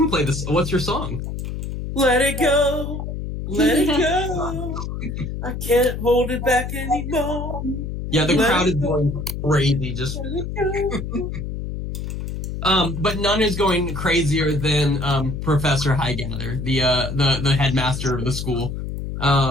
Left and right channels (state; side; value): noise; left; hum, 5 dB below the sound